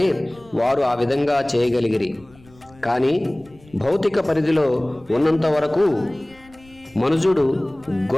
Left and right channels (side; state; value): left; noise; rumble, 27 dB below the sound